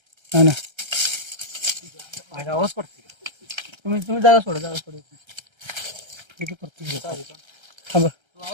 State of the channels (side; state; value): left; late; 1.3 ms